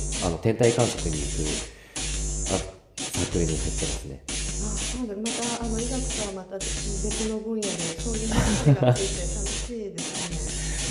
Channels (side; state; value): both; identical; correlation 1.00